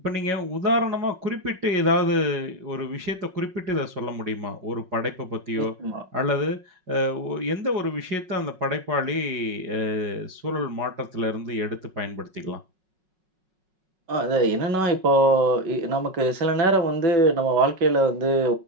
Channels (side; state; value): left; late; 5.4 ms